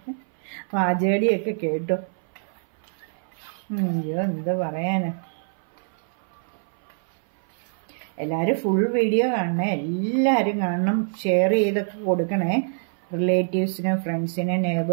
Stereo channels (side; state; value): left; silent; 59 dB below the other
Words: പാചകടിയൊക്കെ കേട്ടു. അയ്യോ എന്താ പറയാനാ. എല്ലാവരും ഫുൾ വീഡിയോ കാണണേ, എല്ലാവരും കാണണം, ഷെയർ ചെയ്തൊക്കെ കൊടുക്കണേ. റിലേറ്റീവ്സിനും